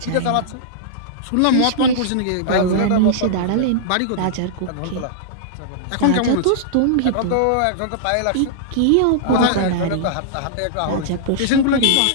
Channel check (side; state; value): both; different; correlation -0.02